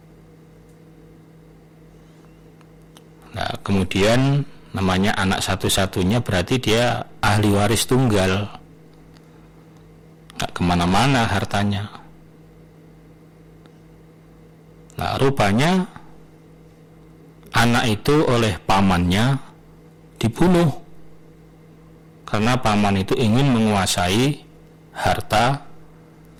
Nah, kemudian namanya anak satu-satunya berarti dia ahli waris tunggal, nggak kemana-mana hartanya. Nah, rupanya anak itu oleh pamannya dibunuh karena paman itu ingin menguasai harta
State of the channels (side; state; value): both; identical; correlation 1.00